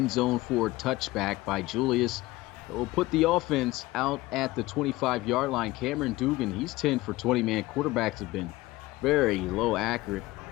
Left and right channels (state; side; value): quieter; right; 19.2 dB